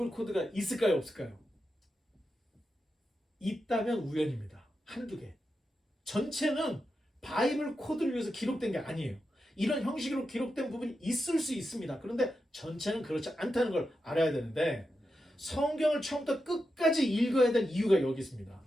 코드가 있을까요, 없을까요? 있다면 우연입니다. 한두 개. 전체는 바이블 코드를 위해서 기록된 게 아니에요. 이런 형식으로 기록된 부분이 있을 수 있습니다. 그런데 전체는 그렇지 않다는 걸 알아야 되는데 성경을 처음부터 끝까지 읽어야 될 이유가 여기 있습니다.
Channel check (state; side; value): normal; both; correlation 0.88